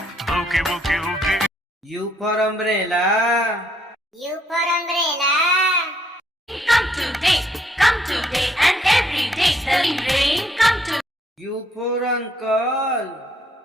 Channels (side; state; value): both; normal; correlation 0.69